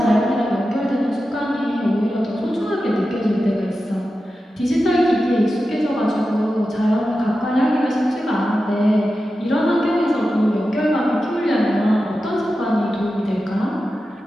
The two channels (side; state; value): both; normal; correlation 0.92